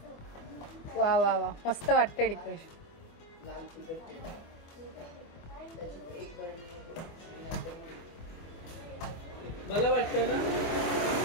वा वा वा मस्त वाटते डेकोरेशन. मला वाटतं ना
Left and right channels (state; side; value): late; right; 24 ms